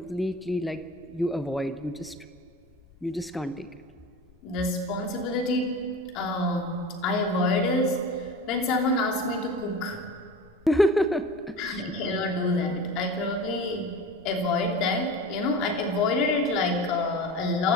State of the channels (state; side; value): noise; left; rumble, 28 dB below the sound